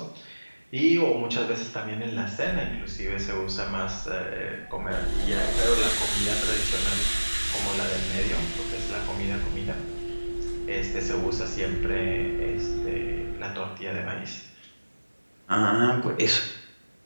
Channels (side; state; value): both; inverted; correlation -1.00